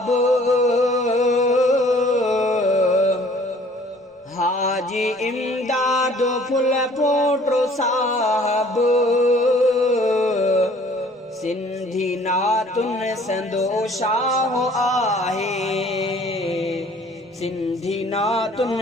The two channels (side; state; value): both; normal; correlation 0.55